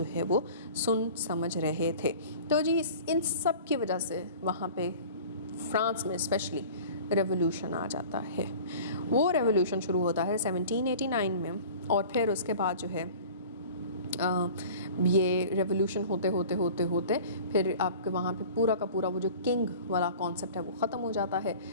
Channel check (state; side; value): inverted; both; correlation -0.42